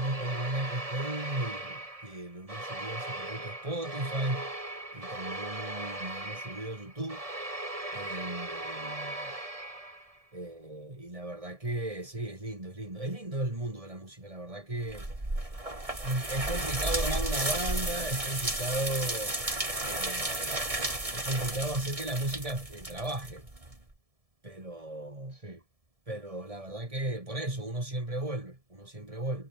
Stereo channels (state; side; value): late; left; 1.7 ms